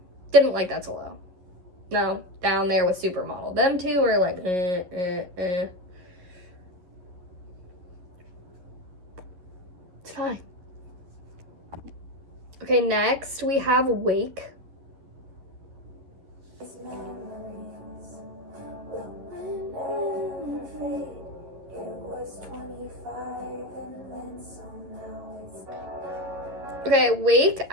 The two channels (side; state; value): left; late; 11 ms